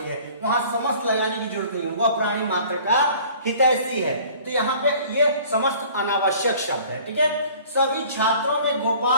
है, वहां समस्त लगाने की जरूरत नहीं है, वह प्राणी मात्र का हितैषी है। तो यहाँ पे ये समस्त अनावश्यक शब्द है, ठीक है। सभी छात्रों में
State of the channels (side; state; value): both; inverted; correlation -0.50